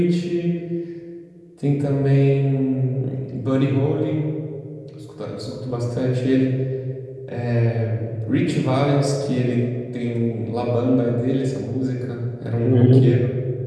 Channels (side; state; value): both; identical; correlation 1.00